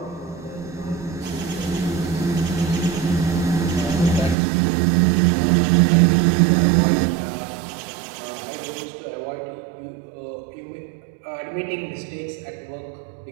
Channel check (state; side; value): drops out; left; at 4.4 s